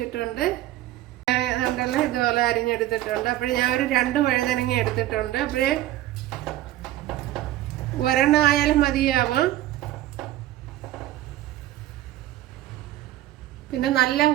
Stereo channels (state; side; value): quieter; left; 14.6 dB